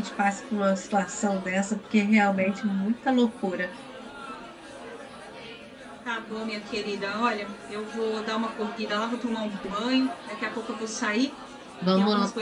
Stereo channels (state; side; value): identical; both; correlation 1.00